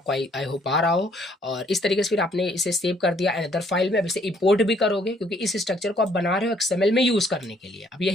आई होप आ रहा हो। और इस तरीके से फिर आपने इसे सेव कर दिया अनदर फाइल में। अब इसे इंपोर्ट भी करोगे क्योंकि इस स्ट्रक्चर को आप बना रहे हो XML में यूज करने के लिए। अब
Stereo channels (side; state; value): both; normal; correlation 0.65